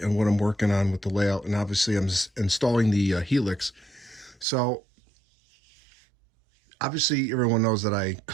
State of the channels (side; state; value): left; drops out; at 4.5 s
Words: on what I'm working on with the layout, and obviously I'm installing the Helix. So obviously everyone knows that I